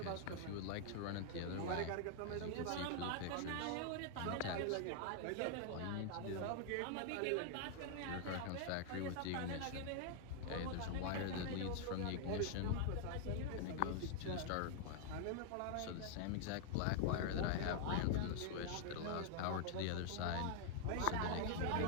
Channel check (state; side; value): different; both; correlation 0.00